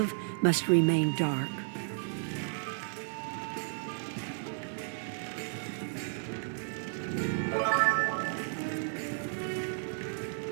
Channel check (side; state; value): left; silent; digital silence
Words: must remain dark.